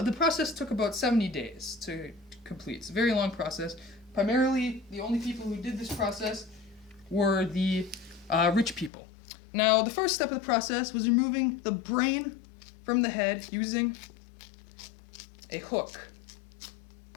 process took about 70 days to complete. It's a very long process. Primarily, the only people who did this process were the rich people. Now, the first step of the process was removing the brain from the head using a hook.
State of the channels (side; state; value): right; drops out; at 8.9 s